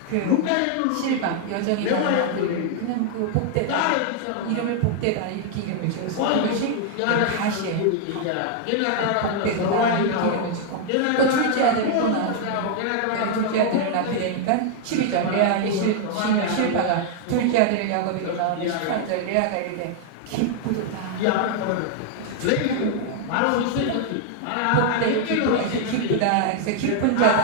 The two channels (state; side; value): different; both; correlation 0.00